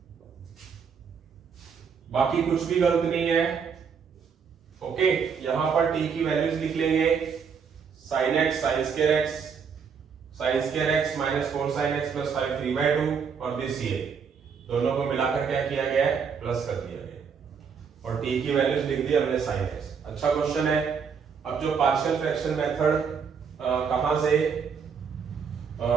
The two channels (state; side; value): quieter; left; 6.4 dB